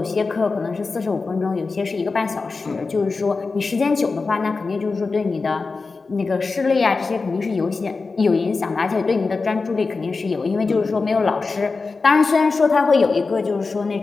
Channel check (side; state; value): right; quieter; 4.2 dB